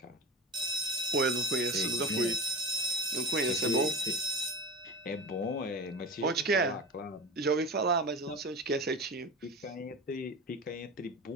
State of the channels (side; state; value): both; normal; correlation 0.31